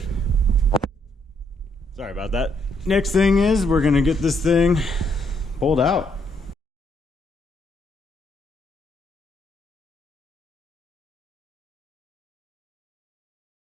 Sorry about that. Next thing is we're gonna get this thing pulled out.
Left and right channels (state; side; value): normal; both; correlation 0.73